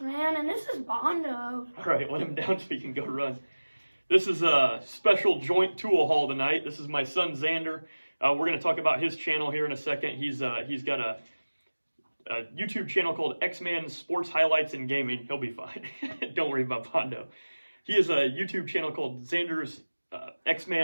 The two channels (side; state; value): both; inverted; correlation -1.00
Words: and this is Bondo. All right, let him down so he can go run. This is a special joint tool haul tonight. This is my son, Xander. We're going to talk about his channel here in a second. He's got a YouTube channel called X-Man Sports Highlights and Gaming. He'll be fine. Don't worry about Bondo. He has a YouTube channel called Xander's